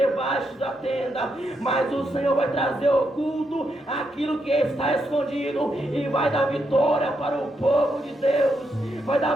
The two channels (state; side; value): normal; both; correlation 0.81